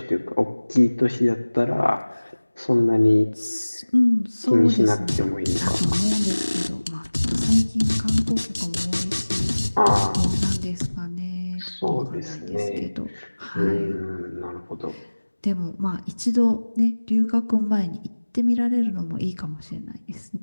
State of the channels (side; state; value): both; inverted; correlation -1.00